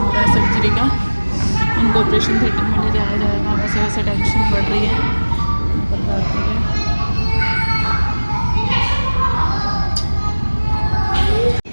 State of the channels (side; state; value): both; inverted; correlation -1.00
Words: रहा है सर्जरी का, उनको ऑपरेशन थिएटर में ले जाया जाएगा, वैसे वैसे टेंशन बढ़ रही है निकल जाती है।